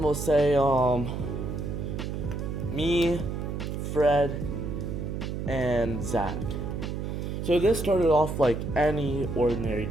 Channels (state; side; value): noise; right; hum, 4 dB below the sound